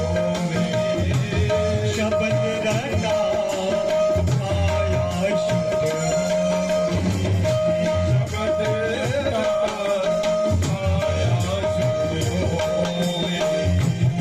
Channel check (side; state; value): both; identical; correlation 1.00